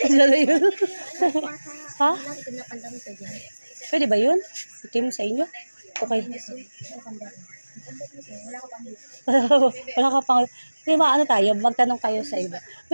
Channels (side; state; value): both; inverted; correlation -1.00